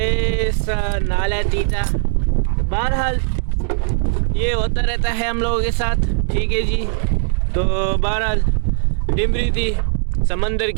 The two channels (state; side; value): silent; left; digital silence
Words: नाला तीता। बहरहाल ये होता रहता है हम लोगों के साथ, ठीक है जी। तो बहरहाल डिमरी थी, समंदर